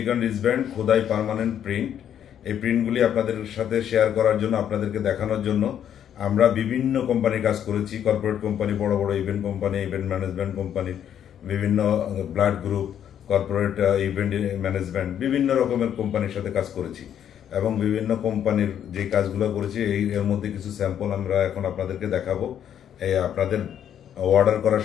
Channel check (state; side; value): quieter; right; 9.6 dB